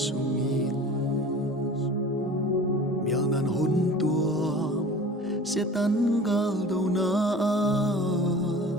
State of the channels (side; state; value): both; normal; correlation 0.41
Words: sungin mial nan hun tua se tan gal do na